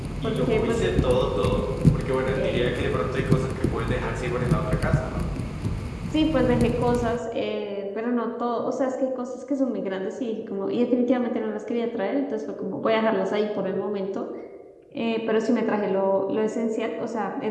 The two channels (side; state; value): both; identical; correlation 1.00